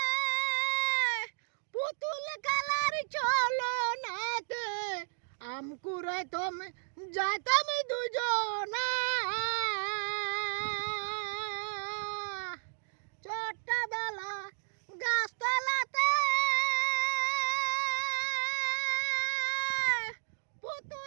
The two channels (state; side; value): silent; left; digital silence